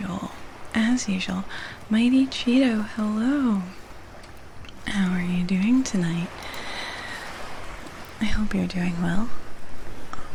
Mighty Cheeto, hello. How are you doing tonight? I hope you're doing well.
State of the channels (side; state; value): both; identical; correlation 1.00